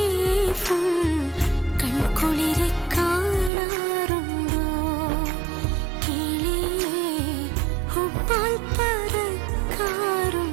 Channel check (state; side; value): drops out; left; at 3.5 s